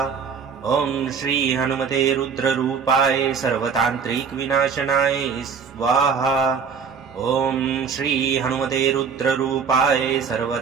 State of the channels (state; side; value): quieter; left; 6.1 dB